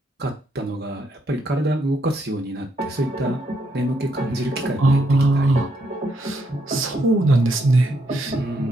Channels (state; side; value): normal; both; correlation 0.76